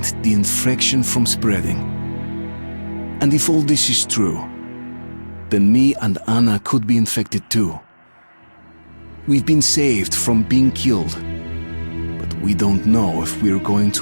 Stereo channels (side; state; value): both; inverted; correlation -1.00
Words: the infection from spreading. And if all this is true, then me and Anna could be infected too. We've been saved from being killed, but we don't know if we're going